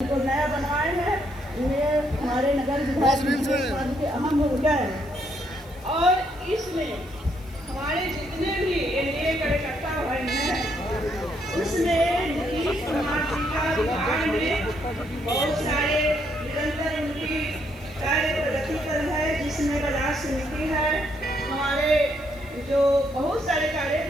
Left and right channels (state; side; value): noise; left; hiss, 26 dB below the sound